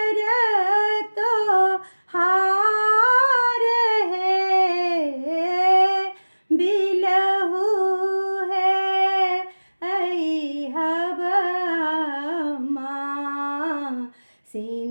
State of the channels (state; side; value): inverted; both; correlation -1.00